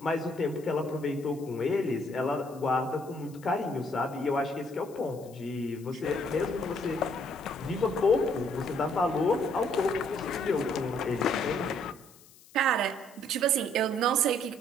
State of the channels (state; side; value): noise; left; hiss, 24 dB below the sound